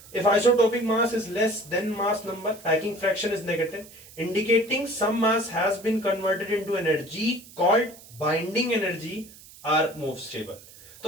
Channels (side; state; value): right; noise; hiss, 21 dB below the sound